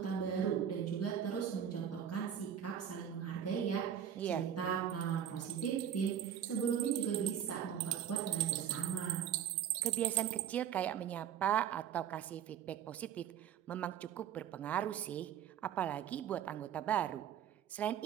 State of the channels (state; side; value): quieter; left; 9.2 dB